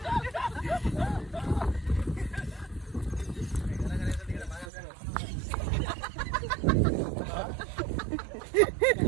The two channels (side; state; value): left; drops out; at 4.7 s